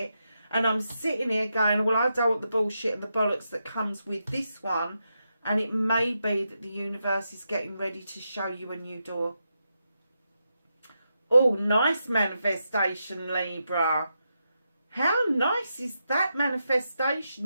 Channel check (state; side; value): inverted; both; correlation -0.85